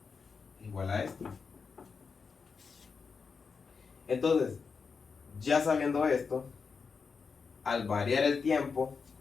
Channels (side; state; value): right; quieter; 5.3 dB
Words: es igual a esto. Entonces, ya sabiendo esto, al variar el tiempo,